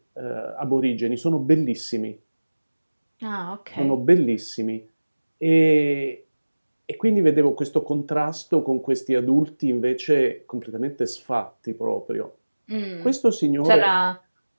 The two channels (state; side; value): inverted; both; correlation -1.00